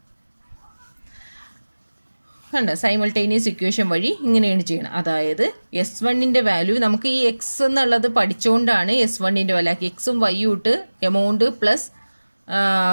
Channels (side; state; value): both; inverted; correlation -1.00